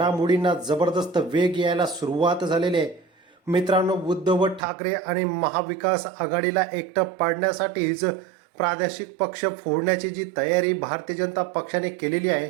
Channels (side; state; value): left; drops out; at 4.6 s